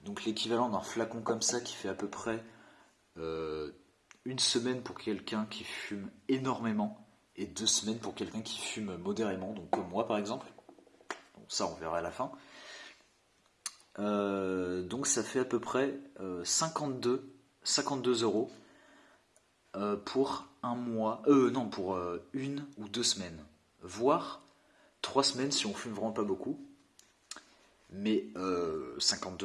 donc l'équivalent d'un flacon comme ça qui fait à peu près euh, une semaine pour quelqu'un qui fume énormément et 2 semaines pour quelqu'un qui fume modérément, donc comme moi par exemple. Donc ça on verra à la fin. Donc ça fait à peu près 52 euros pour un mois, non pour 1 ou 2 semaines, voire 3 semaines si on fume vraiment pas beaucoup. Mais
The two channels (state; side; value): identical; both; correlation 1.00